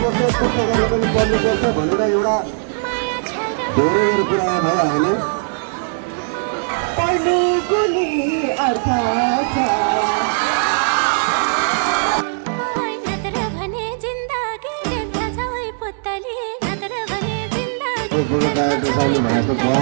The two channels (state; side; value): silent; left; digital silence